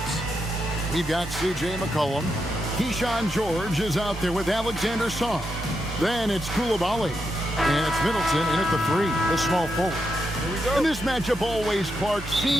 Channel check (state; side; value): normal; both; correlation 0.83